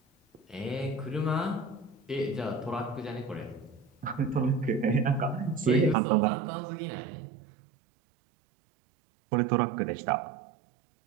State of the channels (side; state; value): left; drops out; at 6.0 s